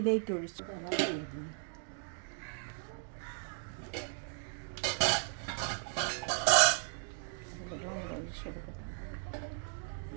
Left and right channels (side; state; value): left; silent; 54 dB below the other